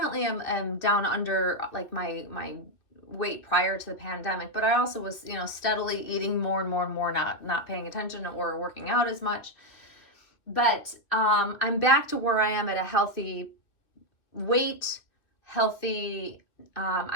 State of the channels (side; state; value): right; late; 2.4 ms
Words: am down under like my weight prior to the pandemic, but I also was, steadily eating more and more and more, not paying attention or working out as much. But I'm back to where I am at a healthy weight, healthy.